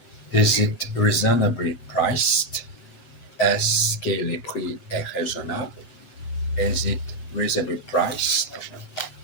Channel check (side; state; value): right; late; 7.9 ms